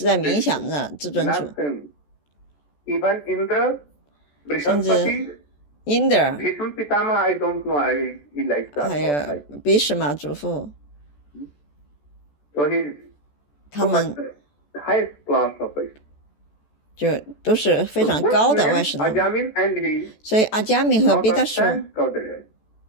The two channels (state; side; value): late; right; 14 ms